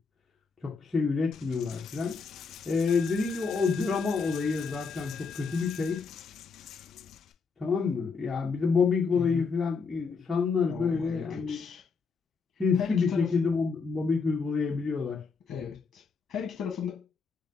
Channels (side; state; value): right; quieter; 5.0 dB